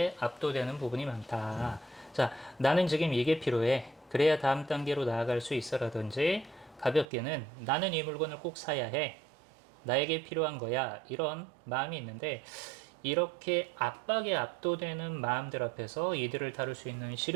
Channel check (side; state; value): left; drops out; at 7.1 s